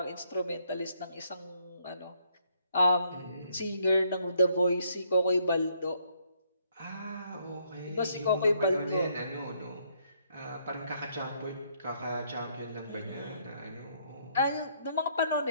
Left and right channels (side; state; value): both; inverted; correlation -0.70